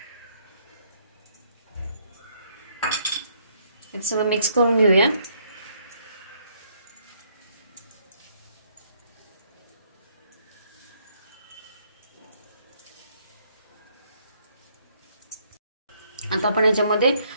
हे सगळं मिक्स करून घेऊया। आता आपण याच्यामध्ये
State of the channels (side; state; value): both; inverted; correlation -0.69